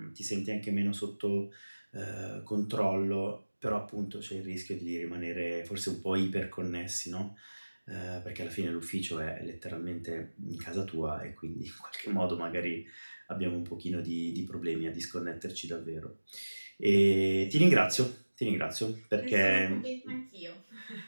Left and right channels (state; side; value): inverted; both; correlation -1.00